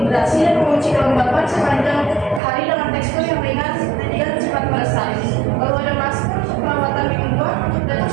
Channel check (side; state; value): left; drops out; at 2.4 s